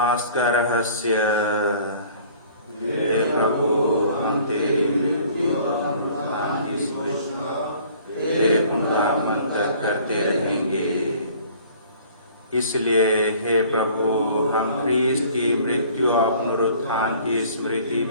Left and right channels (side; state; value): both; inverted; correlation -0.52